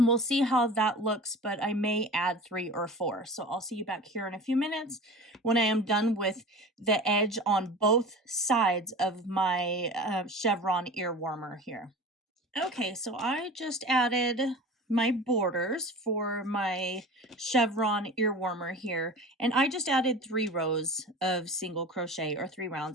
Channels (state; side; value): normal; both; correlation 0.36